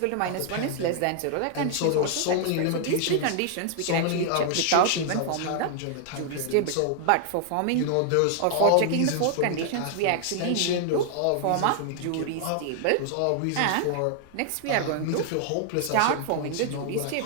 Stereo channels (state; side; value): different; both; correlation 0.00